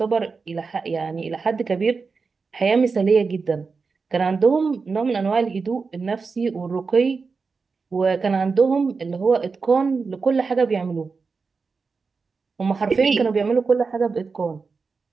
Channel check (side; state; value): left; quieter; 4.7 dB